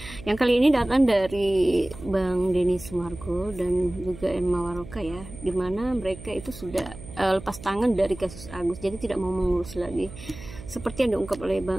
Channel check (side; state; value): right; noise; hum, 15 dB below the sound